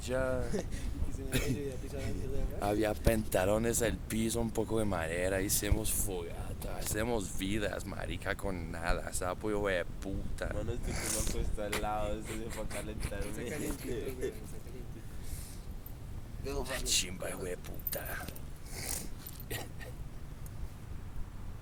Y que se me olvidó pisar la mierda de afuera. Había pantalones al piso, un poco de madera, hicimos fogata, hacemos vidas, marica, con nada, sapo hijo de puta. Mano, estoy como acuesto al lado, esto se fue a Está calentarme. calientito, güey, está calientito. La chimba hijo de puta.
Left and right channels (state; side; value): identical; both; correlation 1.00